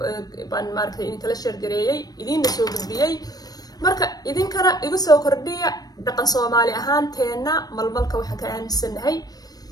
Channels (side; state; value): right; late; 0.19 ms